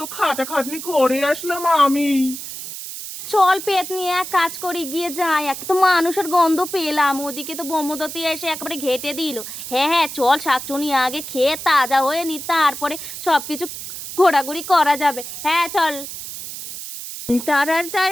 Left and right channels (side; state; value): right; noise; hiss, 9 dB below the sound